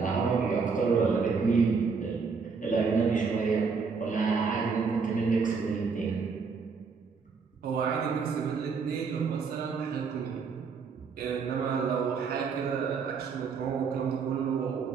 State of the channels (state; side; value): quieter; left; 5.2 dB